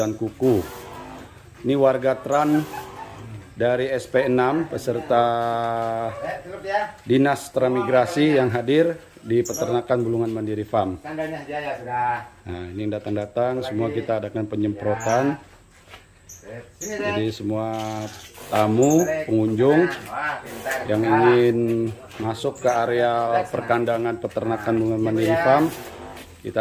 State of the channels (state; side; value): identical; both; correlation 1.00